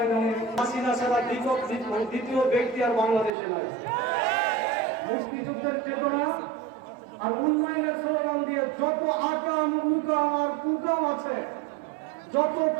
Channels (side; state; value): left; drops out; at 3.3 s